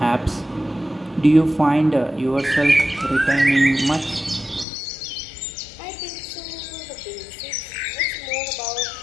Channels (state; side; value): drops out; right; at 4.7 s